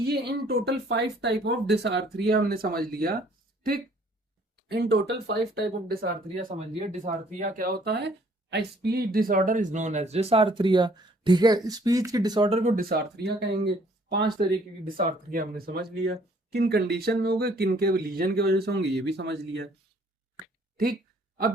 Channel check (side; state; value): both; normal; correlation 0.60